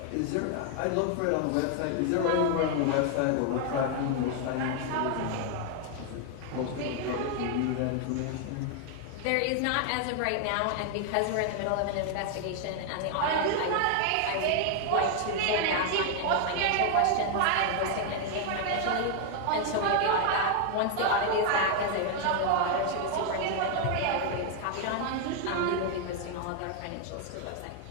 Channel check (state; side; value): different; both; correlation 0.00